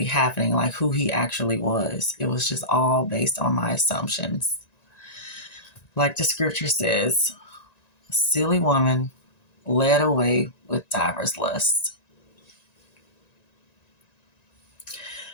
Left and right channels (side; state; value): right; late; 1.9 ms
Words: happening, like who he actually was. It was just all based on my assumptions. Like the scripture says, a silly woman led away with divers lusts.